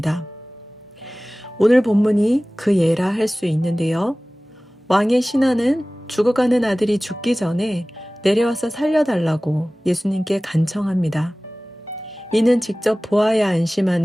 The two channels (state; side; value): normal; both; correlation 0.98